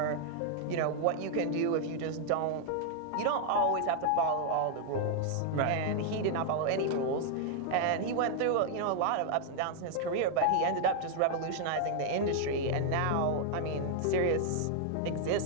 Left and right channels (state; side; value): different; both; correlation 0.00